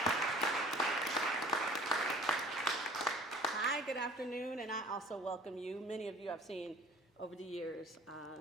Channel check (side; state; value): both; normal; correlation 0.48